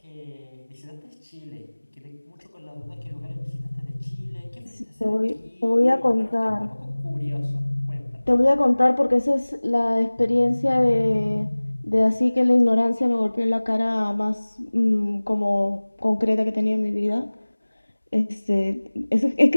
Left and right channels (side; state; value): both; inverted; correlation -1.00